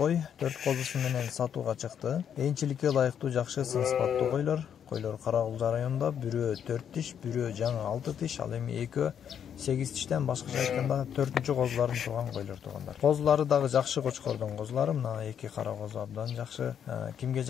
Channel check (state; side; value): quieter; right; 8.5 dB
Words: 4 козусу менен сатууга чыкты. Энчиликке ылайыктуу жакшы сын сыпаттуу койлор. Койлор Карагулжа районунда бирөө 4 тиш, бирөө жаңы 6 тиш, ал эми экөө 8 тиштен башкача айтканда 4-чү козуларын турган койлор туугандар. Козулары дагы жакшы кочкордун козулары, мына эки кара козу абдан жакшы. Кимге